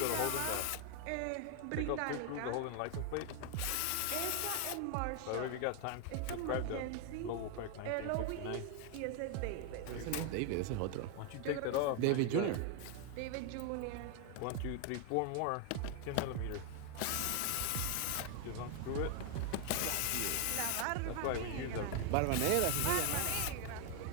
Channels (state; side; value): different; both; correlation 0.01